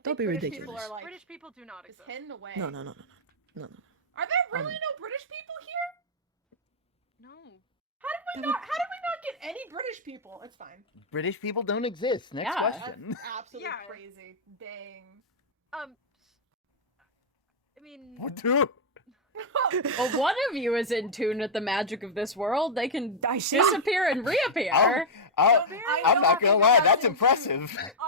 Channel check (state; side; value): normal; both; correlation -0.05